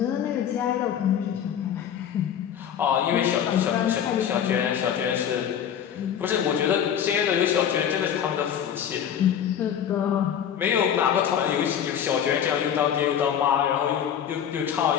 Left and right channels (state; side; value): quieter; right; 9.1 dB